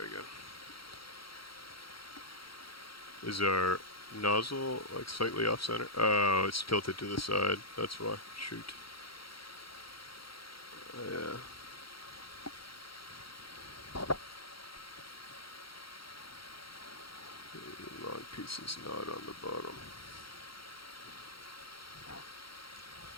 Is our nozzle like slightly off center? Oh, it's tilted to the side. That's why. Shoot. Yeah. The long piece is not on the bottom.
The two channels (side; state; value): right; late; 0.74 ms